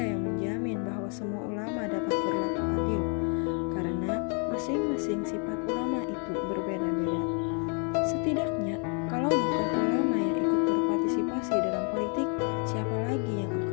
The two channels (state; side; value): quieter; right; 39.8 dB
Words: yang menjamin bahwa semua ulama dapat berlaku adil, karena masing-masing sifat ulama itu berbeda-beda. Setidaknya, kalau bukan ulama yang ikut berpartisipasi dalam politik, siapa lagi yang